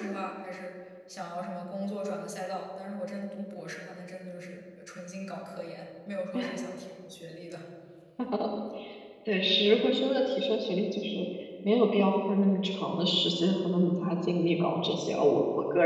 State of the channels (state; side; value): identical; both; correlation 1.00